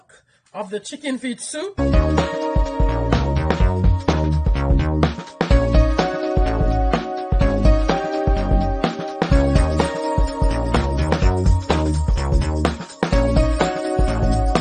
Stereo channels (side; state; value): both; identical; correlation 1.00